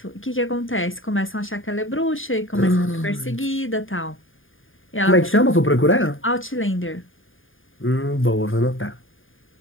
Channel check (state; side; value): late; right; 0.59 ms